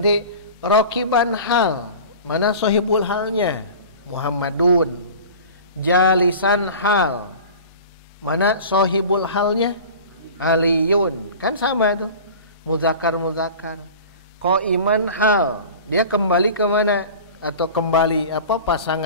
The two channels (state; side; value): inverted; both; correlation -0.38